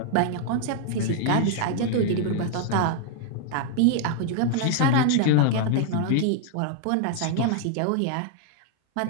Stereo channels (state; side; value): different; both; correlation 0.00